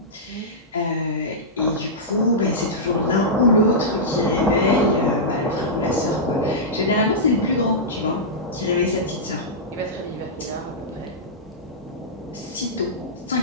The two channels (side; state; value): both; normal; correlation -0.12